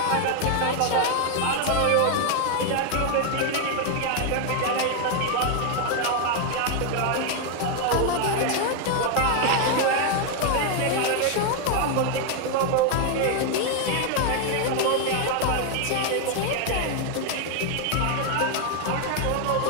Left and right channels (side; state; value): both; different; correlation 0.00